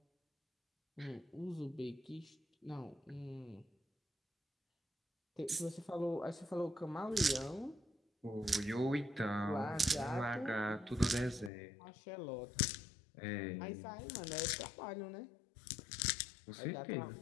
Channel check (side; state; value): right; drops out; at 11.5 s